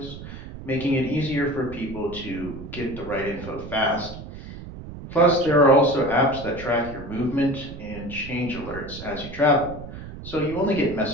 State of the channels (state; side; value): noise; right; rumble, 12 dB below the sound